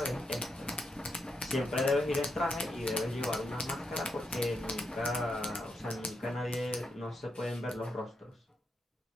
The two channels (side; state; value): both; normal; correlation 0.83